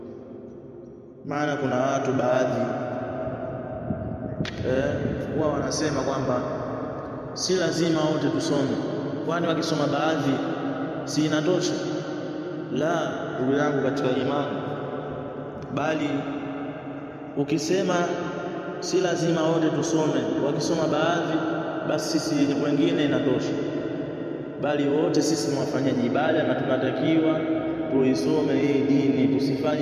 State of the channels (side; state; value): both; identical; correlation 1.00